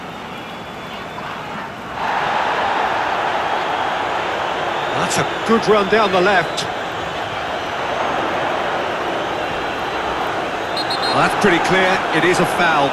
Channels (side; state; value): both; identical; correlation 1.00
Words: That's a good run down the left. Well, that's pretty clear. It is a foul.